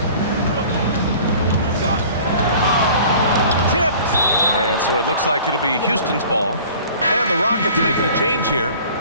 Tipped. And so it looks like it'll be Houston's ball. And the Rockets making a change here.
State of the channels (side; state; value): both; inverted; correlation -0.46